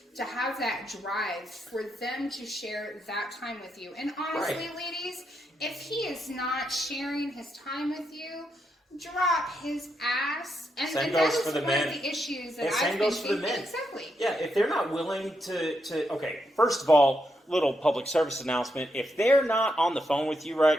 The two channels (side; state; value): both; normal; correlation 0.81